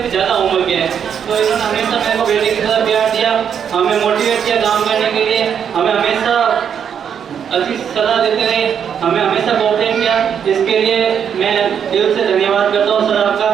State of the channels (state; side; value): quieter; left; 8.0 dB